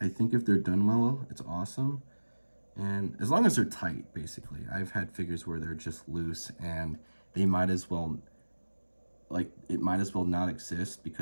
I think if they're done well, it's awesome. And as long as they're tight, basically. I've had figures where they're just loose and they might as well, it might as well not exist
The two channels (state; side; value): inverted; both; correlation -1.00